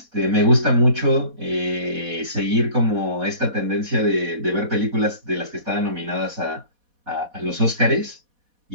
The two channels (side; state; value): left; late; 4.1 ms